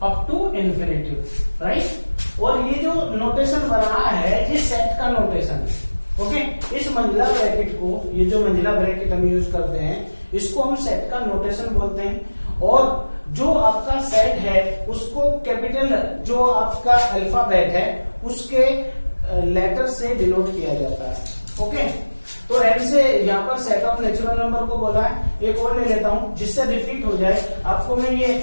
अप टू इन्फिनिटी। राइट, और ये जो नोटेशन बना है ये सेट का नोटेशन है। ओके, इस मंजिला ब्रैकेट को, ये जो मंजिला ब्रैकेट हम यूज करते हैं इसको हम सेट का नोटेशन बोलते हैं। और जो आपका सेट है उसको कैपिटल, जो आपका अल्फाबेट है उसके लेटर से डिनोट किया जाता है। ओके, तो एन से यहाँ पर सेट ऑफ नेचुरल नंबर को बोला है। एक और ले लेता हूं जिससे रिपीट हो जाए। आपको मैं ये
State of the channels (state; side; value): inverted; both; correlation -1.00